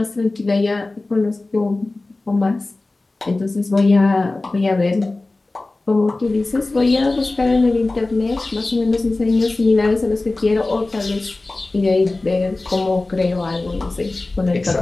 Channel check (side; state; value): right; quieter; 3.1 dB